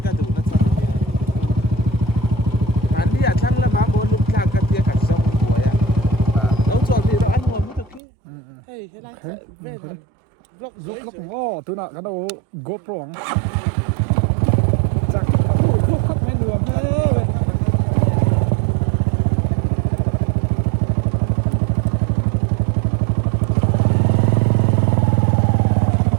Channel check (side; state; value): left; drops out; at 8.0 s